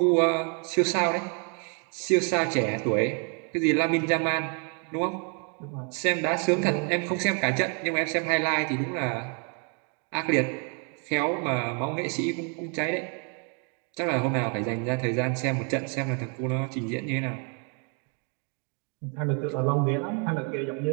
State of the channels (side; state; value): left; quieter; 38.2 dB